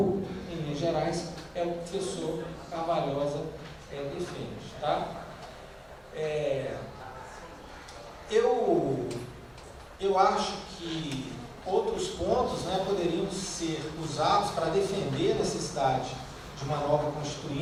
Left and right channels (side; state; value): both; identical; correlation 1.00